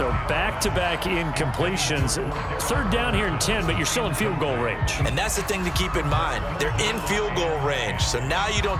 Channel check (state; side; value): identical; both; correlation 1.00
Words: back-to-back incompletions. 3rd down here and 10, but you're still in field goal range. And that's the thing to keep in mind. They're in field goal range, so now you don't